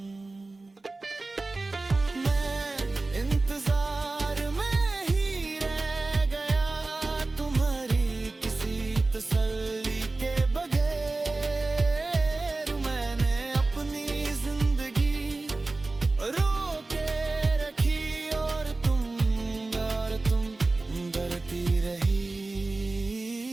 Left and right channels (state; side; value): quieter; left; 3.3 dB